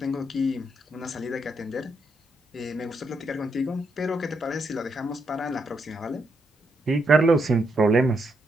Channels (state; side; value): normal; both; correlation 0.78